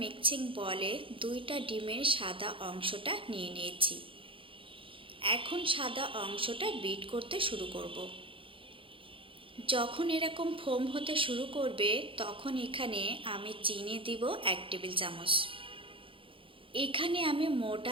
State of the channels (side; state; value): left; late; 0.25 ms